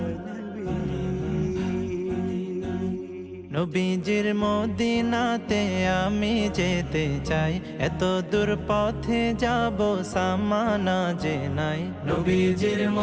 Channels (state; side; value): identical; both; correlation 1.00